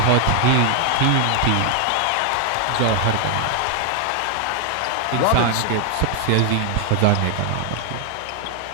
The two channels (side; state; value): both; different; correlation 0.00